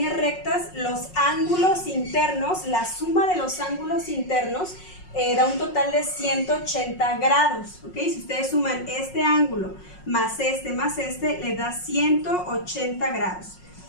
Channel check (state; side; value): late; right; 5.5 ms